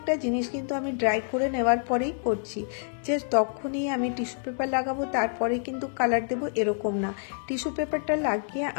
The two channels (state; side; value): silent; right; 60 dB below the other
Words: জিনিস কিন্তু আমি ড্রাই করে নেওয়ার পরেই করছি, যে তখনই আমি টিস্যু পেপার লাগাবো তারপরে কিন্তু কালার দেবো এরকম না। টিস্যু পেপারটা লাগিয়ে